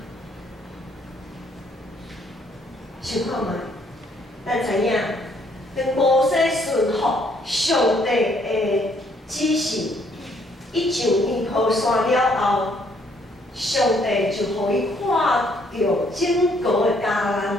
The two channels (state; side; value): normal; both; correlation 0.67